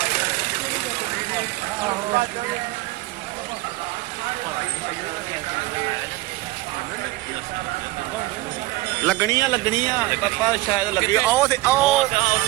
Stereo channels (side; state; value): left; quieter; 19.5 dB